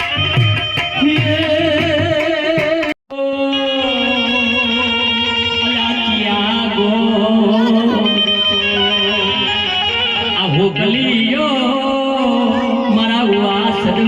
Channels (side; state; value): both; identical; correlation 1.00